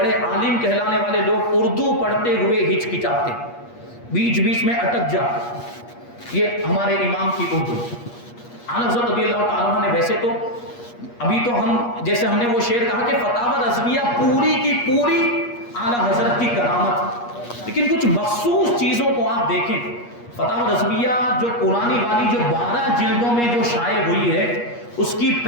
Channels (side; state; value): right; late; 8.4 ms